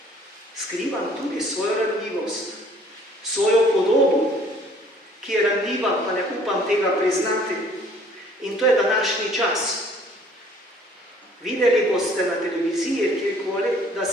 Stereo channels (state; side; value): normal; both; correlation 0.56